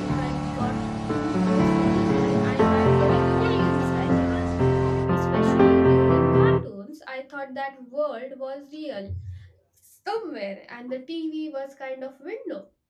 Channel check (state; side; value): identical; both; correlation 1.00